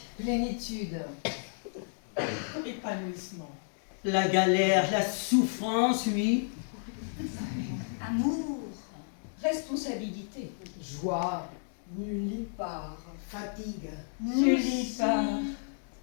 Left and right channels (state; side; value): silent; right; digital silence